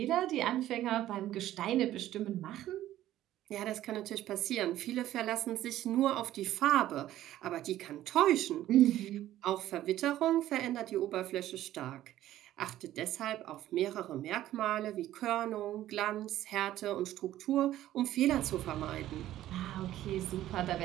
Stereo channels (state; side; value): quieter; left; 13.6 dB